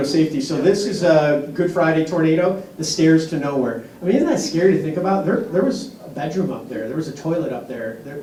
safety. So this is a Good Friday tornado, the stairs to nowhere. I mean, isn't that scary to think about? There was a bedroom up there. There was a toilet up there.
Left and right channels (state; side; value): identical; both; correlation 1.00